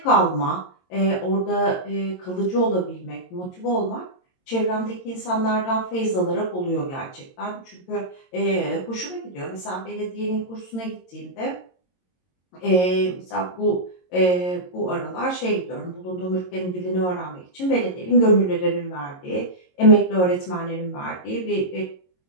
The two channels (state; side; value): late; right; 22 ms